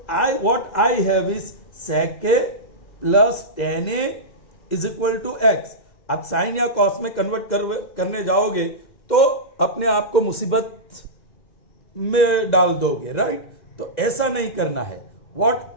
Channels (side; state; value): right; late; 2.0 ms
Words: I what I have is sec a plus tan a is equal to x. आप sine या cos में convert करने जाओगे तो अपने आप को मुसीबत में डाल दोगे, राइट? तो ऐसा नहीं करना है. What